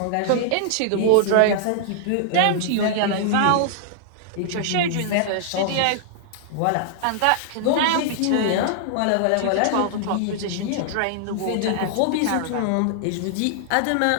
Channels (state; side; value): different; both; correlation -0.01